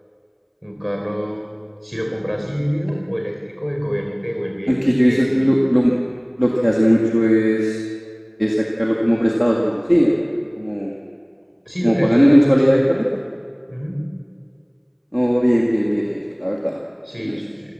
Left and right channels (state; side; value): identical; both; correlation 1.00